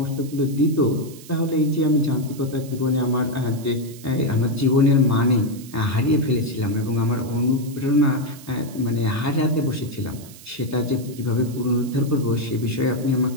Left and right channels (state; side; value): noise; right; hiss, 19 dB below the sound